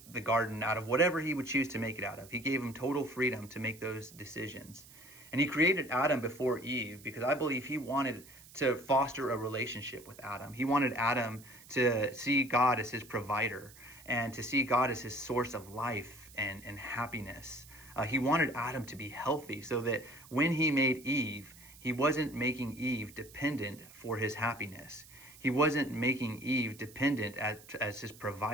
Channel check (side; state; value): right; noise; hiss, 21 dB below the sound